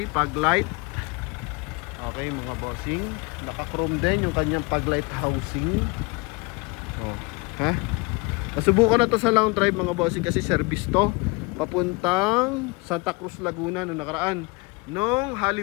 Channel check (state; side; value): quieter; right; 26.8 dB